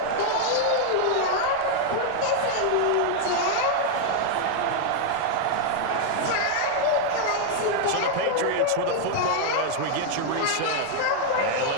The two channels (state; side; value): different; both; correlation 0.00